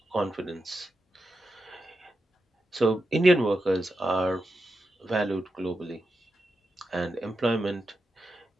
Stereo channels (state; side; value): normal; both; correlation 0.88